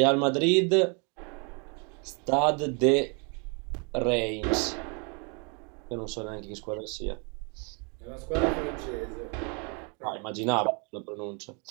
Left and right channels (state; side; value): quieter; left; 35.8 dB